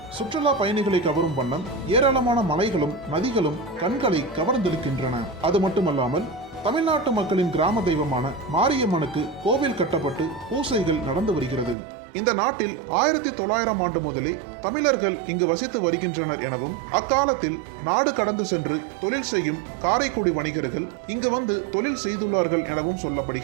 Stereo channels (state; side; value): drops out; left; at 11.8 s